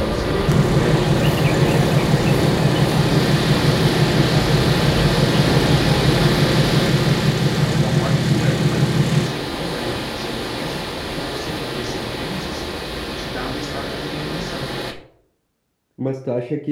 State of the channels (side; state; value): both; identical; correlation 1.00